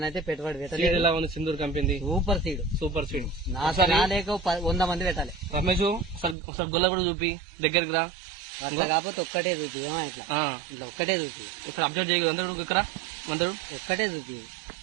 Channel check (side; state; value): left; drops out; at 6.4 s